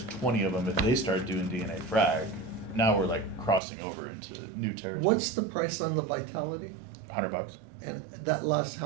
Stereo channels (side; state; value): left; drops out; at 3.6 s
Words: 20 of them. If they start doing DNA frag, now we're like crossing over into new territory. What's the price on the Vitality? $100, And that lasts